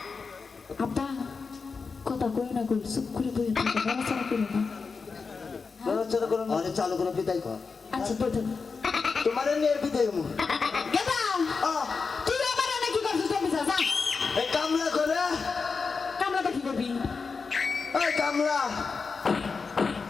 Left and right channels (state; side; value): quieter; right; 4.8 dB